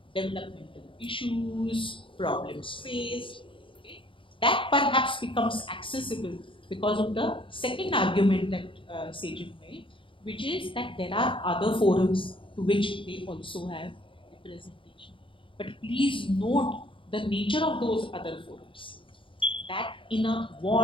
developmental issues, problems faced. Okay? That perhaps becomes accessible because of the second argument that Sejal made, which is that there are other forums to which they also have representation. But please note the nature of those other forums. That in a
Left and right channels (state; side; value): late; right; 0.25 ms